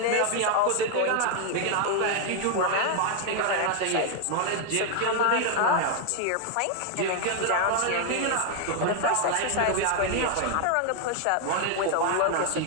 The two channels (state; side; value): different; both; correlation 0.00